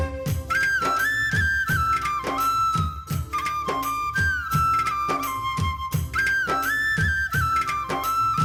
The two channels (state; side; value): identical; both; correlation 1.00